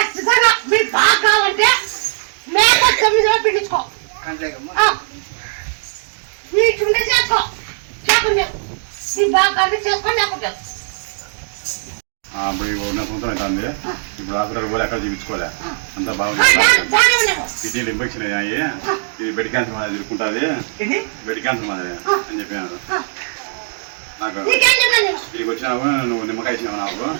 మీరు బాగా కావాలంటే మేక 9 రోజులు పిండించుకో, వీటి చేసుకో, లేకుండా నీ బాగా చేసుకోండి. లేకుండా ఇప్పుడు ఉన్న సంవత్సరం అవుతుంది. ఇప్పుడు హాస్పిటల్ పోలే, ఎక్కడ చూపించుకోలే, అంతా బాగుంది. కిడ్నీలు ఇన్ఫెక్షన్ అయ్యాయి, ఇది బెడ్ క్యాన్సర్ మాదిరి తిరుగుకుంటుంది, బెడ్ క్యాన్సర్ మాదిరి అని చెప్పినారు నాకు. ఇక్కడికి వచ్చినావు, నువ్వు నిమ్మకాయ ఇచ్చినావు నాకు.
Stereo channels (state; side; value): silent; left; digital silence